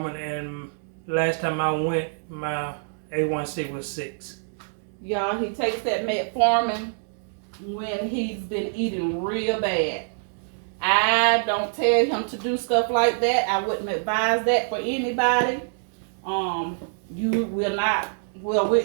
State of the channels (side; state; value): left; silent; digital silence